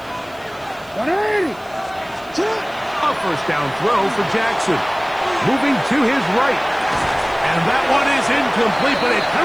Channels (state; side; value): noise; right; hiss, 27 dB below the sound